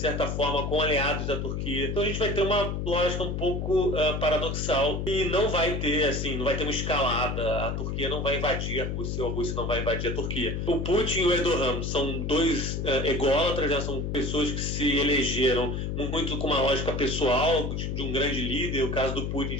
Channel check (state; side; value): noise; left; hum, 2 dB below the sound